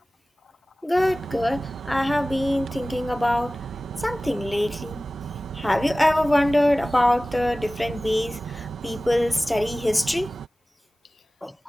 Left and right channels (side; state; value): both; normal; correlation 0.97